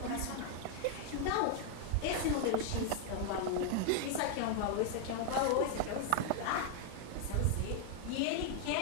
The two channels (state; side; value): different; both; correlation 0.00